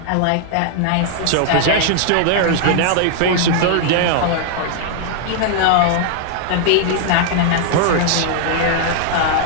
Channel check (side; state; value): both; different; correlation -0.01